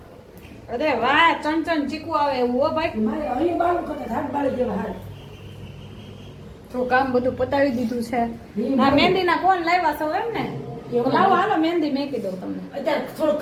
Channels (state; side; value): identical; both; correlation 1.00